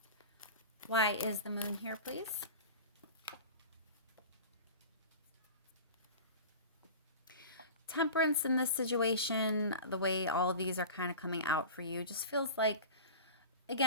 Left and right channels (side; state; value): both; inverted; correlation -0.34